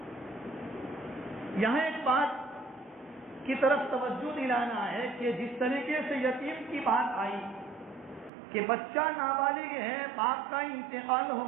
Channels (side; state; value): left; drops out; at 8.3 s